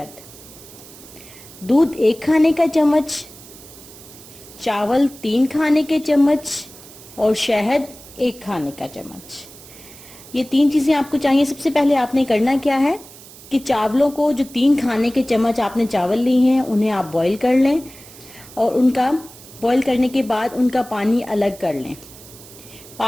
दूध 1 खाने का चम्मच, चावल 3 खाने के चम्मच और शहद 1 खाने का चम्मच। ये 3 चीजें आपको चाहिए। सबसे पहले आपने करना क्या है कि चावलों को, जो 3 खाने के चम्मच आपने चावल लिए हैं, उन्हें आप बॉईल कर लें और उनका बॉईल करने के बाद उनका पानी अलग कर लें।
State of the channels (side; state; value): right; noise; hiss, 19 dB below the sound